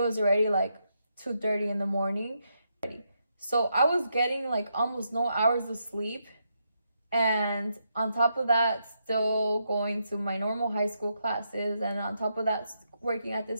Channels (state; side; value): inverted; both; correlation -0.81